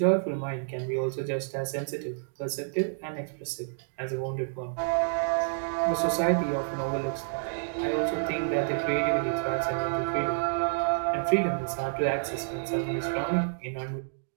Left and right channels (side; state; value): left; silent; digital silence